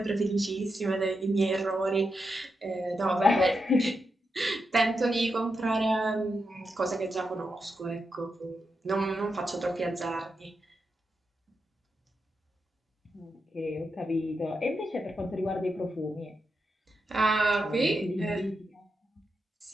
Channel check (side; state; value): both; normal; correlation 0.86